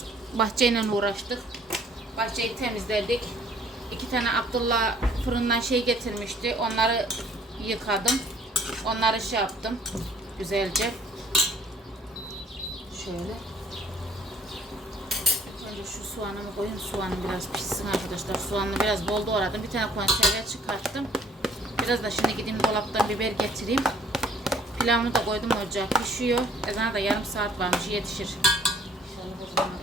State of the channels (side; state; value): both; normal; correlation 0.58